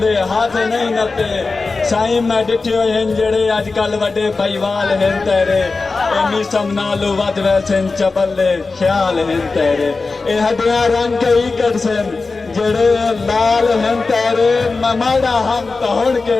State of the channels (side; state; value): right; quieter; 4.0 dB